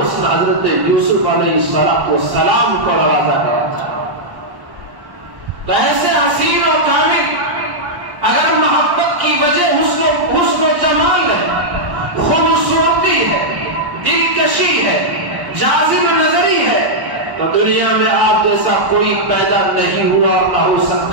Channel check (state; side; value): late; left; 1.1 ms